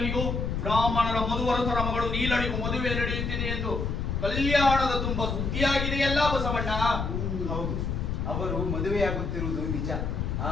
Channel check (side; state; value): left; noise; rumble, 2 dB below the sound